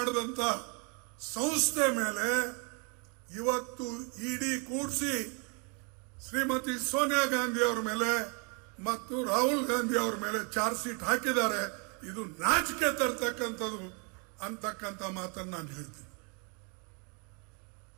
ಸಂಸ್ಥೆ ಮೇಲೆ ಇವತ್ತು ಇಡಿ ಕೂಡಿಸಿ ಶ್ರೀಮತಿ ಸೋನಿಯಾ ಗಾಂಧಿ ಅವರ ಮೇಲೆ ಮತ್ತು ರಾಹುಲ್ ಗಾಂಧಿ ಅವರ ಮೇಲೆ ಚಾರ್ಜ್ ಶೀಟ್ ಹಾಕಿದ್ದಾರೆ. ಇದು ನಾಚಿಕೆ ತರ್ತಕ್ಕಂಥದ್ದು ಅಂತಕ್ಕಂಥ ಮಾತನ್ನು ನಾನು ಹೇಳ್ತೀನಿ.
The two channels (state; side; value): quieter; left; 34.7 dB